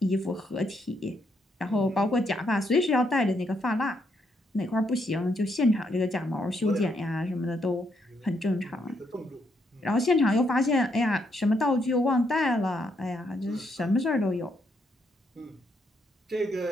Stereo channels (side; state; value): both; normal; correlation 0.76